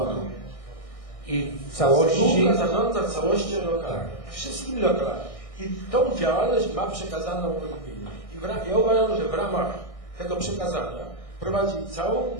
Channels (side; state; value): right; late; 1.6 ms